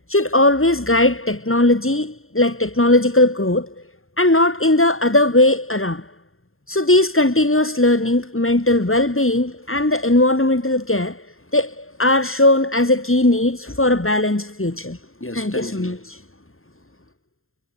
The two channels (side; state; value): right; late; 0.61 ms